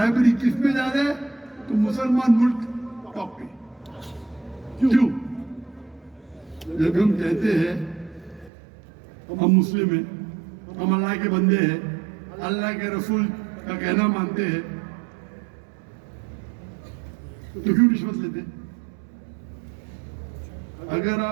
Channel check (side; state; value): left; drops out; at 8.5 s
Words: किस पे ज्यादा है तो मुसलमान मुल्क टॉप पे। क्यों? जब हम कहते हैं हम मुस्लिम हैं, हम अल्लाह के बंदे हैं, अल्लाह के रसूल का कहना मानते हैं, तो क्यों रिश्वत लेते? अगर